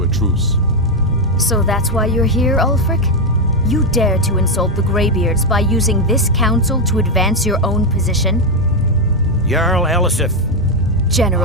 a truce. So that's why you're here, Ulfric? You dare to insult the Greybeards by using this council to advance your own position? Jarl Elisif.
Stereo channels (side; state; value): both; normal; correlation 0.04